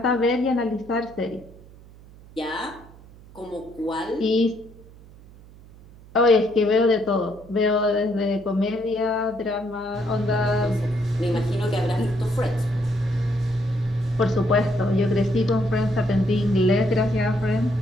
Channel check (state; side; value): noise; right; hum, 22 dB below the sound